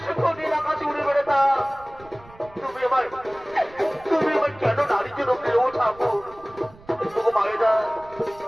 সুখ নিয়ে আকাশে উড়ে বেড়াতাম তুমি আমার কেন নারী জনম দিলে ও ঠাকুর তবু মায়েরা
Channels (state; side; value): noise; right; rumble, 23 dB below the sound